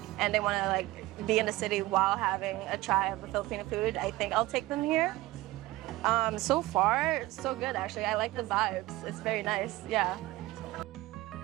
and they want to like be in the city while having a try of the Filipino food, I think I'll take them here. So far, so good actually. I like the vibes. It's very nice, yeah.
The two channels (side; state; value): left; quieter; 18.4 dB